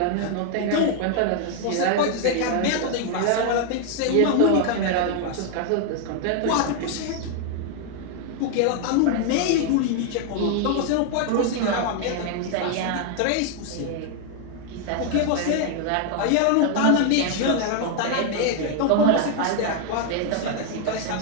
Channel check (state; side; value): different; both; correlation 0.00